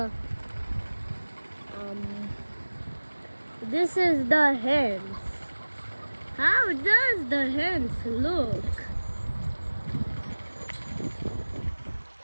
This is the hens. How does the hens look?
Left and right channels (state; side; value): inverted; both; correlation -1.00